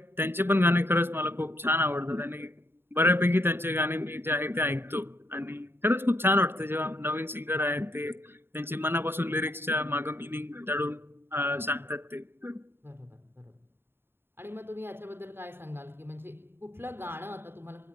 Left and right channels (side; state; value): left; late; 0.11 ms